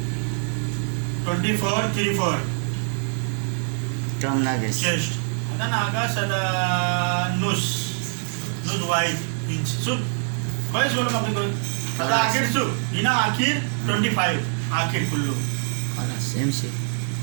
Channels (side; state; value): left; silent; 62 dB below the other